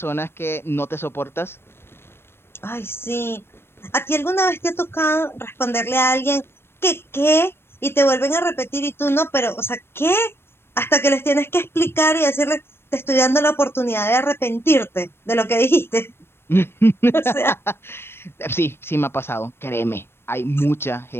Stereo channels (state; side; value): late; right; 0.12 ms